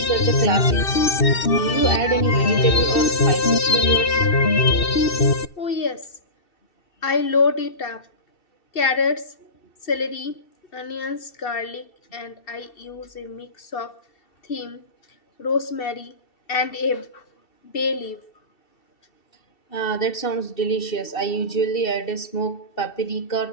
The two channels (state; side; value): late; right; 2.7 ms